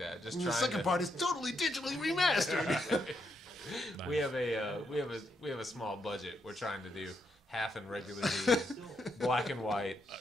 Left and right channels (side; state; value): both; normal; correlation 0.80